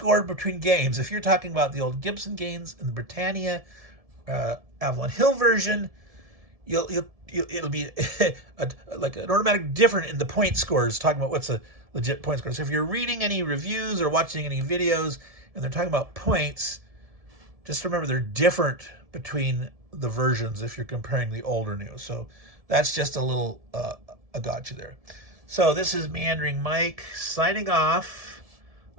between games, if you're talking about the old Gibson games and the Britannia Avalon Hill version, it'll be like an automatic different in the point scores, talking about what's a legit point score. So if you're reading any reviews or watching any videos and they're talking about points, just remember they're different between the versions if you're comparing the old or new. So that's just a little a gotcha there. So this is Meandering Mike signing off.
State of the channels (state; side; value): late; left; 1.7 ms